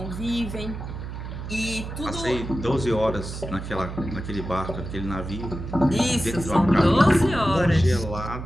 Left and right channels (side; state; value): right; noise; hum, 8 dB below the sound